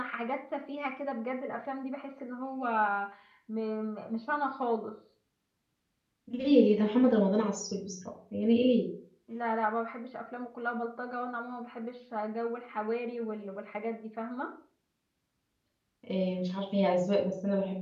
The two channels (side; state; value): both; identical; correlation 1.00